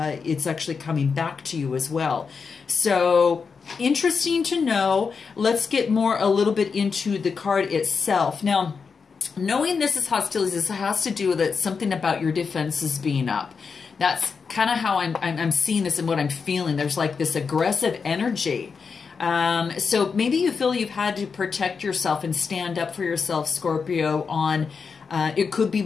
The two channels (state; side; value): quieter; right; 5.4 dB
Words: actually coming back to you as well. So interesting to know. Let's get a little bit into the card itself. Now, knowing this is hostilities, this has to do with something about your defenses being up. That's kind of how I'm seeing this and what I'm feeling. There's like this aggressive energy. So maybe you feel you've had to protect yourself and stand up for yourself, Scorpio, on, it could be